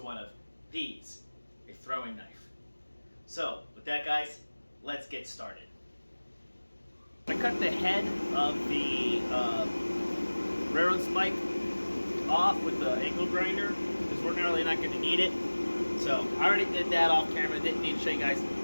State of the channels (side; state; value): both; inverted; correlation -1.00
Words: one of these, a throwing knife. So, with that guys, let's get started. I cut the head of the railroad spike off with the angle grinder, because we're really not going to need it. So, I already did that off camera, didn't need to show you guys